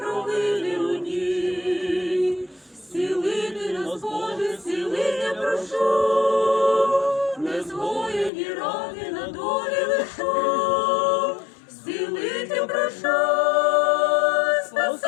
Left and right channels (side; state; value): right; drops out; at 8.3 s